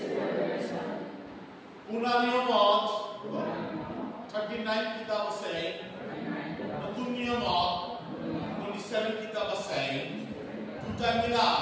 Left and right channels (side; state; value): both; identical; correlation 1.00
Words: Unaniyamot 39 kitab আছে Nutun-niyamot 27 kitab আছে দুটা